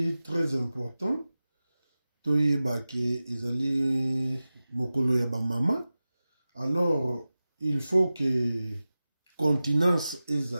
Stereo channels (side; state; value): both; inverted; correlation -0.96